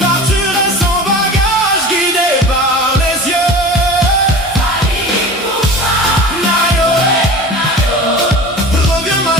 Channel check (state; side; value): normal; both; correlation 0.36